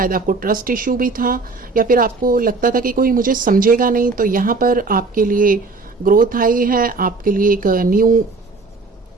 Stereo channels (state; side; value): quieter; left; 3.9 dB